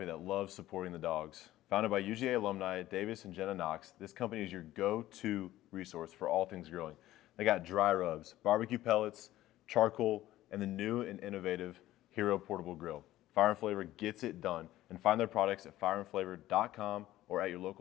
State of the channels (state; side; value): quieter; right; 15.0 dB